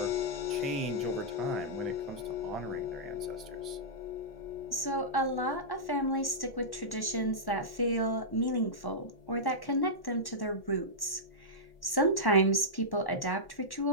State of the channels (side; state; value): right; late; 1.1 ms